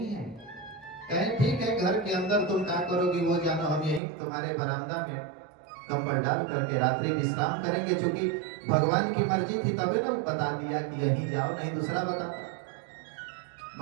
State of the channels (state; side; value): drops out; left; at 4.0 s